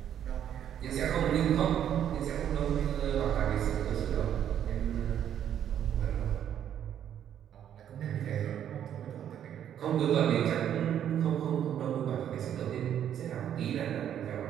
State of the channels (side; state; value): left; quieter; 9.9 dB